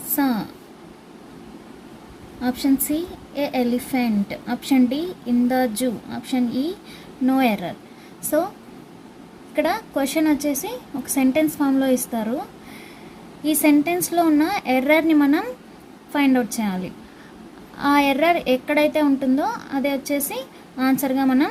saw, option C a elephant, option D in the zoo, option E no error. So ఇక్కడ క్వశ్చన్ వచ్చేసి ఒక సెంటెన్స్ ఫామ్లో ఇస్తారు. ఈ సెంటెన్స్లో ఉన్న ఎర్రర్ని మనం ఫైండ్ అవుట్ చేయాలి. ఆ ఎర్రర్ ఎక్కడైతే ఉంటుందో అదే వచ్చేసి ఆన్సర్గా మనం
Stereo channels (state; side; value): identical; both; correlation 1.00